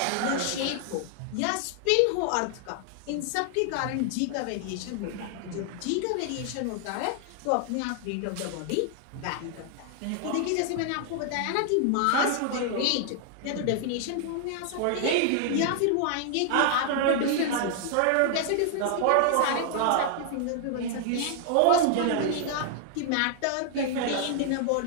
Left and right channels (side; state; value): both; different; correlation 0.00